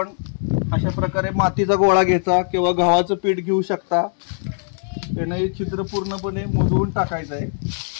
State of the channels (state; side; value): silent; right; 65 dB below the other